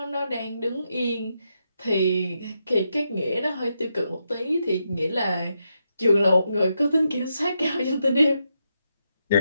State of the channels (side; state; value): both; inverted; correlation -0.83